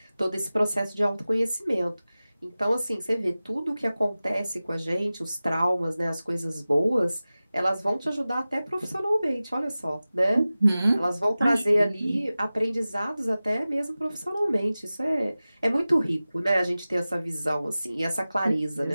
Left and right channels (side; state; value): both; inverted; correlation -0.96